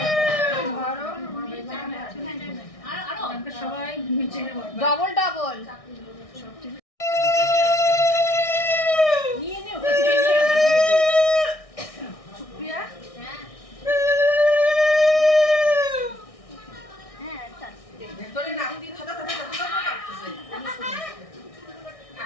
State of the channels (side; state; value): right; late; 1.6 ms